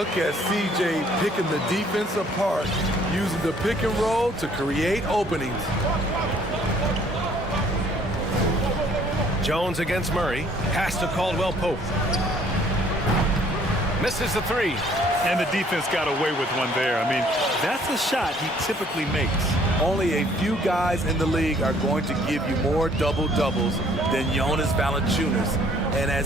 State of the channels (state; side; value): normal; both; correlation 0.60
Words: at CJ picking the defense apart, using the pick and roll to create openings. Jones against Murray. Pass to Caldwell Pope. Misses the 3. And the defense got away with one there. I mean, that's a shot he typically makes. Only a few guys in the league are going to give you more double-doubles than Jonas Valanciunas. And